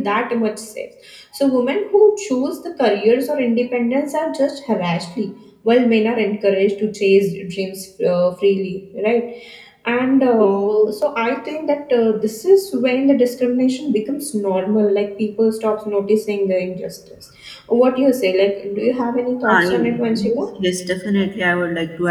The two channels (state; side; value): identical; both; correlation 1.00